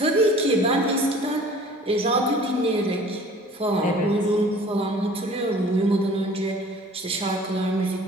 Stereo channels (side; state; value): both; normal; correlation 0.48